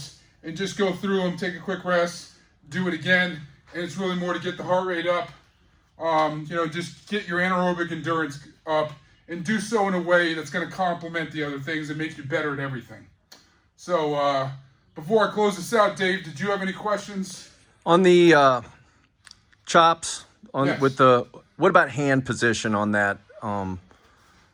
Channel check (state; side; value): identical; both; correlation 1.00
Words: and just go through them, take a quick rest, do it again. And it's really more to get the heart rate up, you know, just get your anaerobic endurance up, and do so in a way that's going to complement the other things and make you better at everything. So before I close this out, Dave, did you have any questions? On the chops, Yes. with the, what about hand position on that